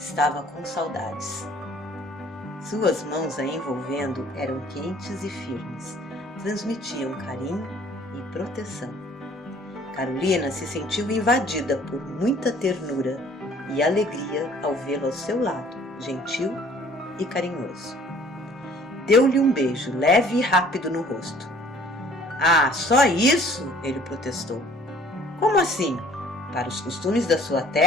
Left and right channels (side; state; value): both; normal; correlation 0.55